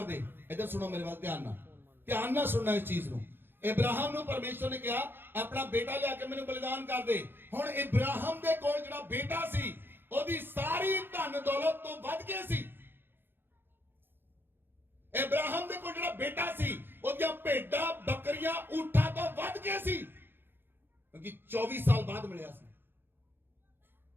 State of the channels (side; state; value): left; late; 0.10 ms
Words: दे। इधर सुनो मेरे बात, ध्यान ना सुनना इस चीज ਨੂੰ। इब्राहिम ਨੂੰ परमेश्वर ने कहा अपना बेटा लिया के मैनू बलिदान कर दे। हुण इब्राहिम दे कोल जिहड़ा बेटा सी ਉਹਦੀ ਸਾਰੀ ਧਨ ਦੌਲਤ ਤੋਂ ਵੱਧ ਕੇ ਸੀ। ਇਬਰਾਹਿਮ ਦੇ ਕੋਲ ਜਿਹੜਾ ਬੇਟਾ ਸੀ ਉਹਦੀਆਂ ਭੇਡਾਂ ਬੱਕਰੀਆਂ ਊਠਾਂ ਤੋਂ ਵੱਧ ਕੇ ਸੀ, ਕਿਉਂਕਿ 24 ਸਾਲ ਬਾਅਦ ਮਿਲਿਆ ਸੀ।